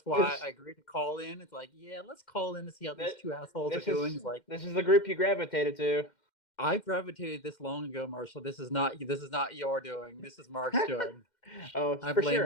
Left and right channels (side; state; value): right; late; 2.1 ms